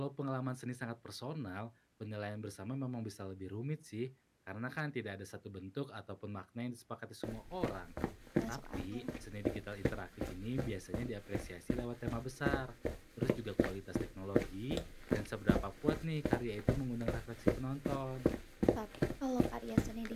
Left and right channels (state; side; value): identical; both; correlation 1.00